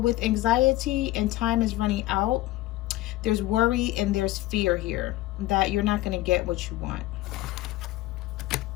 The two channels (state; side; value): quieter; right; 17.1 dB